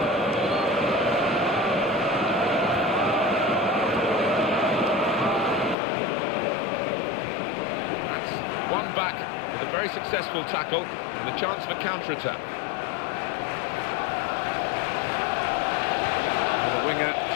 One back with a very successful tackle and a chance for counter-attack. Well, the winger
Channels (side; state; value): right; drops out; at 5.8 s